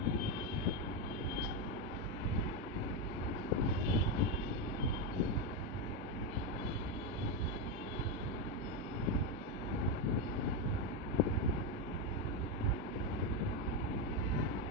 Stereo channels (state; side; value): normal; both; correlation 0.08